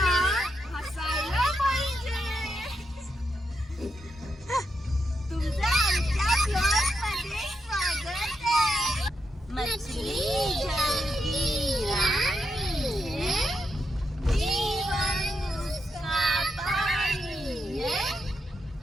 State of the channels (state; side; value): normal; both; correlation 0.83